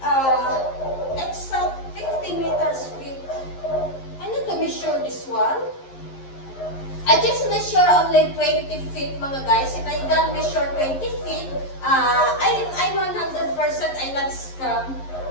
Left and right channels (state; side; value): late; right; 11 ms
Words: it's a 50 meters feet. I need to measure this one. I just measure only 20 feet, mga guys. If I don't measure 20 feet, I'm 100% I'm not scam.